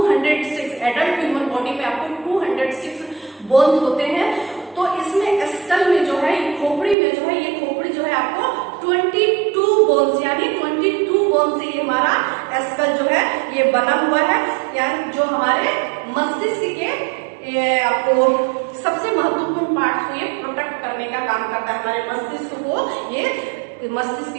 एडल्ट ह्यूमन बॉडी में आपको 206 बोन्स होते हैं। तो इसमें स्कल में जो है, खोपड़ी में जो है, ये खोपड़ी जो है आपको 22 बोन्स यानी 22 बोन से ये हमारा स्कल जो है ये बना हुआ है, यानी जो हमारे मस्तिष्क के आपको सबसे महत्वपूर्ण पार्ट को ये प्रोटेक्ट करने का काम करता है। हमारे मस्तिष्क को ये मस्तिष्क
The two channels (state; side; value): drops out; left; at 7.0 s